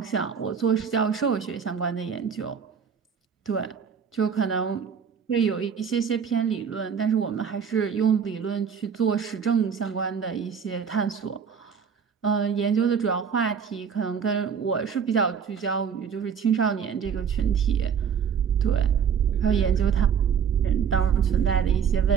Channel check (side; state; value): left; quieter; 7.0 dB